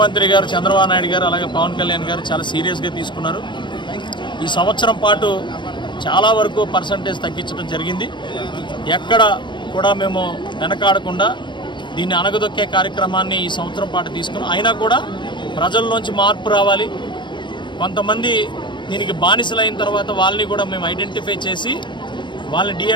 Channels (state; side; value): late; right; 0.22 ms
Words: గారు చంద్రబాబు నాయుడు గారు అలాగే పవన్ కళ్యాణ్ గారు చాలా సీరియస్గా తీసుకున్నారు. ఈ సంవత్సరం పాటు చాలా వరకు పర్సంటేజ్ తగ్గించడం జరిగింది. ఎక్కడ కూడా మేము వెనకాడకుండా దీన్ని అణగదొక్కే కార్యక్రమాన్ని ఈ సంవత్సరం పాటు తీసుకున్నాం. అయినా కూడా ప్రజల్లోంచి మార్పు రావాలి. కొంతమంది దీనికి బానిసలైన తర్వాత వాళ్ళని కూడా మేము ఐడెంటిఫై చేసి వాళ్ళని